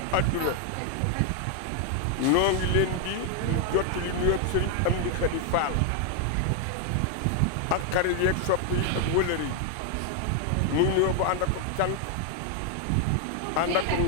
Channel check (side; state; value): both; different; correlation 0.00